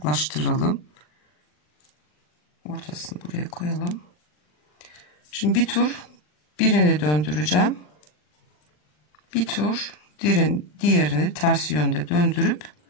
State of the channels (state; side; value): late; right; 40 ms